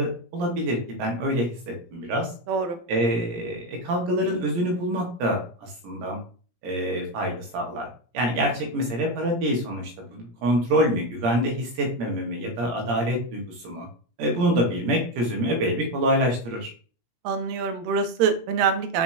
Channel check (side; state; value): left; late; 17 ms